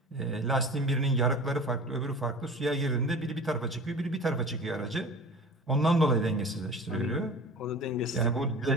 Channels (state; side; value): normal; both; correlation 0.38